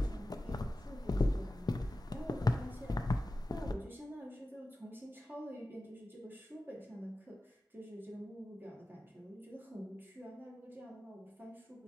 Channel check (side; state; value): both; normal; correlation 0.94